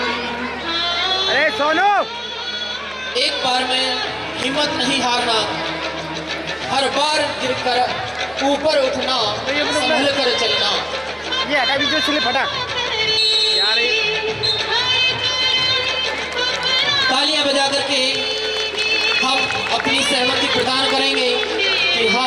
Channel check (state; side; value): identical; both; correlation 1.00